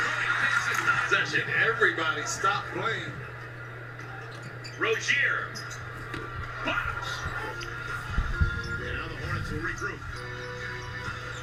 Cody takes his possession. Everybody stop playing. Rozier. Box. And now the Hornets will regroup.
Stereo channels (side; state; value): both; identical; correlation 1.00